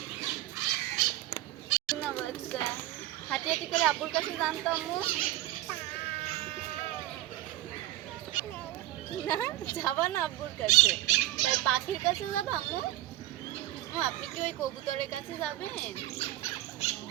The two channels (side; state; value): left; quieter; 15.4 dB